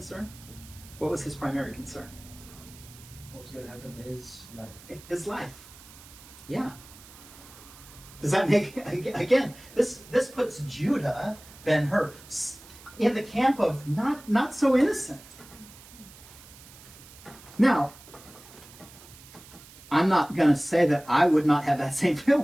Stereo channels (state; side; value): noise; right; hiss, 20 dB below the sound